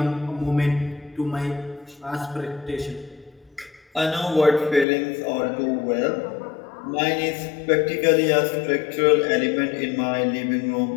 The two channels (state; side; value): drops out; right; at 4.9 s